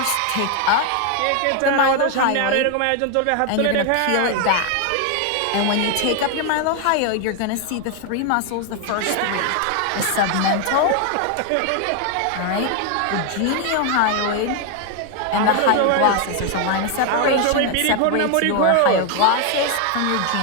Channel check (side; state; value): both; different; correlation 0.01